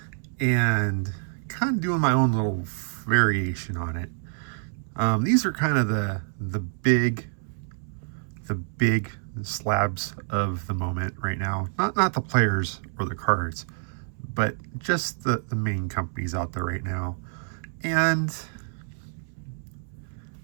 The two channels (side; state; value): left; silent; 60 dB below the other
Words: and kind of doing my own little variation on it. These are kind of the big slabs of the moment right now. Not the players or the cards, but just the main companies out there right now. And